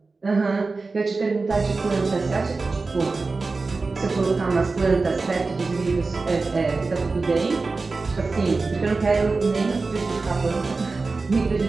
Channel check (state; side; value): quieter; left; 3.9 dB